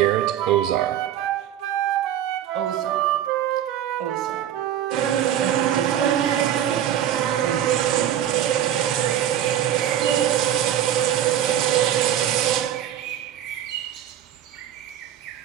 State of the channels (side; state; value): left; quieter; 11.0 dB